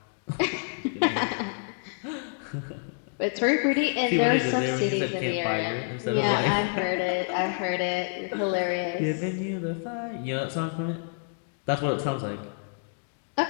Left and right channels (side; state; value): right; silent; 59 dB below the other